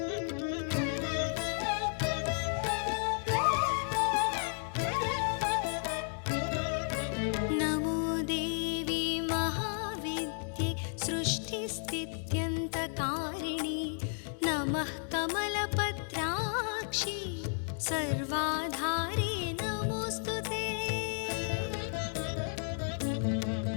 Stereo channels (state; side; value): silent; right; 56 dB below the other